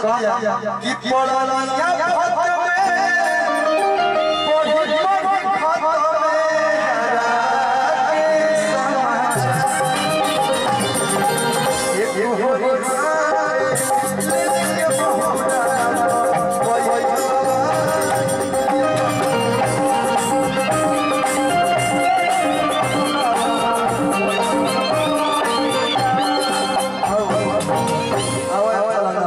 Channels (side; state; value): both; identical; correlation 1.00